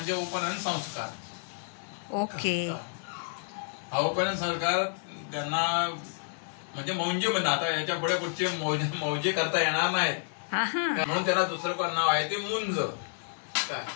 उपनयन संस्कार. ओके. हा उपनयन संस्कार त्यांना म्हणजे मौंजे म्हणतात. आता याच्या पुढे कुठचे मौजे करता येणार नाहीत म्हणून त्याला दुसरं पण नाव आहे ते मुंज. काय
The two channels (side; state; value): right; silent; digital silence